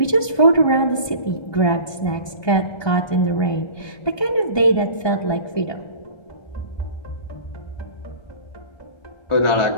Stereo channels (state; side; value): late; right; 1.2 ms